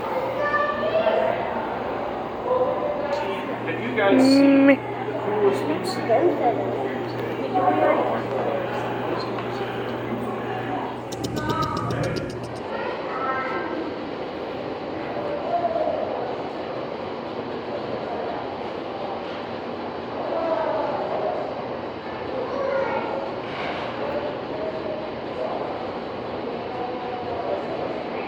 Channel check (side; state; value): both; identical; correlation 1.00